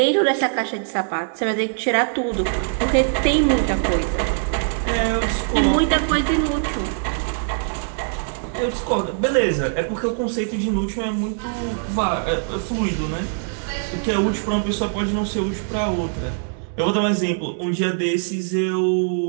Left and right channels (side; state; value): left; silent; digital silence